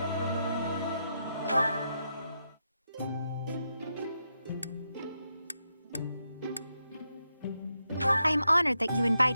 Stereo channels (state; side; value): inverted; both; correlation -0.84